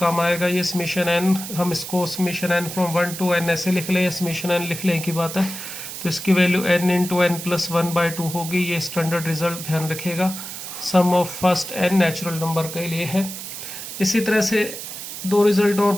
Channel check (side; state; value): right; noise; hiss, 9 dB below the sound